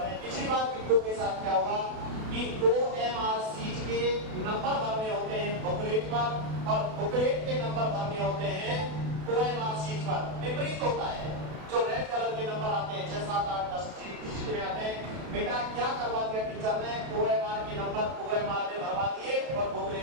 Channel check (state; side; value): late; left; 32 ms